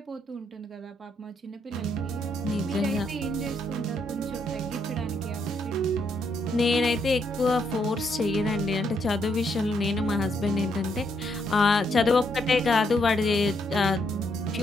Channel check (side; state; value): both; normal; correlation 0.75